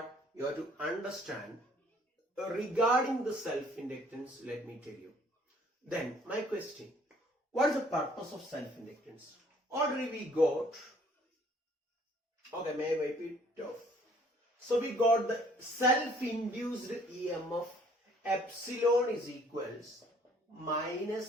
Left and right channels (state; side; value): normal; both; correlation 0.59